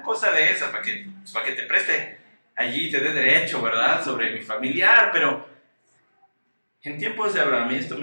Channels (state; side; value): inverted; both; correlation -1.00